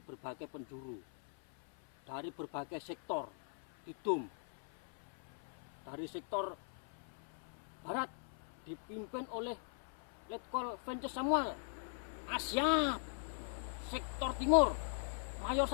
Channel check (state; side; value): silent; right; 51 dB below the other